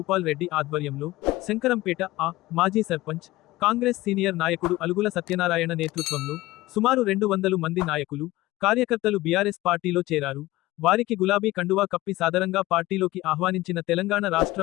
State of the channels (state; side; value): quieter; right; 18.1 dB